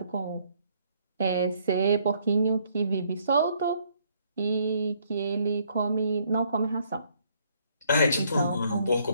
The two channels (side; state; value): both; inverted; correlation -0.67